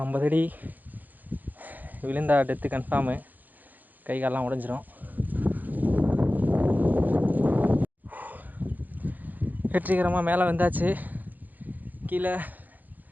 50 அடி விழுந்தா டெத்து கன்ஃபார்மு. கை காலெலாம் உடஞ்சிரும். வெற்றிகரமாக மேலே வந்தாச்சு. கீழே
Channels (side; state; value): left; late; 0.084 ms